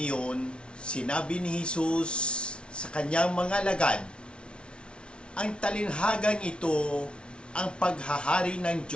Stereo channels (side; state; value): right; late; 0.058 ms